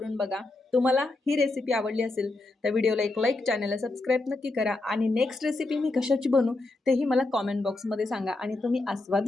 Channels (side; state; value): right; quieter; 3.0 dB